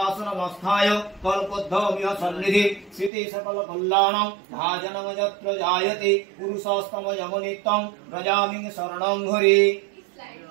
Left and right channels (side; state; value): left; drops out; at 3.1 s